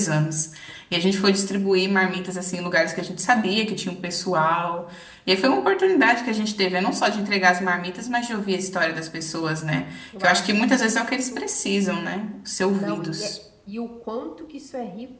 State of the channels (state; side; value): identical; both; correlation 1.00